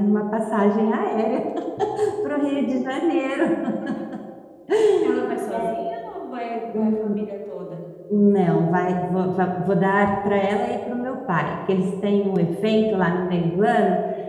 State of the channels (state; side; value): identical; both; correlation 1.00